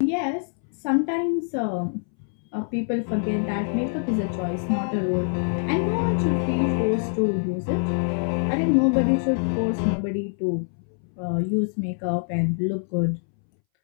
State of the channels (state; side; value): silent; right; 62 dB below the other